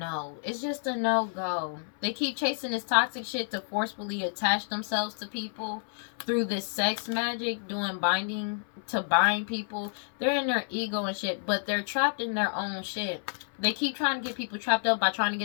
It's just a no-go. They keep chasing this toxic shit to forcefully attach themselves to people through this sex magic, doing binding to bind people. They're in their ego and shit, but they're trapped in their own shit. They keep trying to get people trapped up by trying to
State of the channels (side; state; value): right; silent; 57 dB below the other